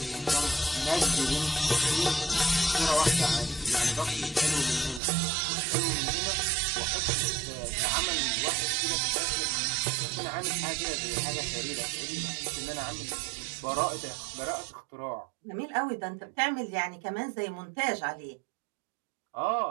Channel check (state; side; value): drops out; left; at 5.0 s